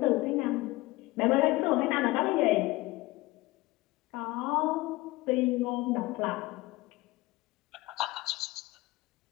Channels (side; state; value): right; quieter; 20.4 dB